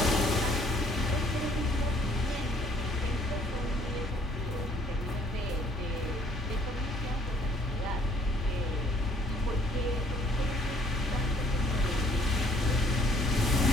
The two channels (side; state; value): both; normal; correlation 0.61